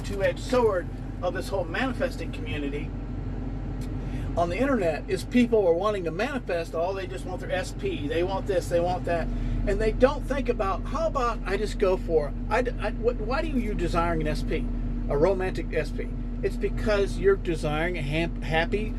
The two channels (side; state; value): both; identical; correlation 1.00